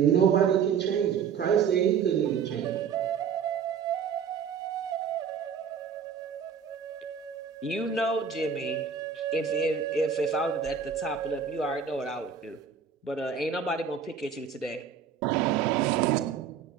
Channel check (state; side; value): quieter; left; 6.8 dB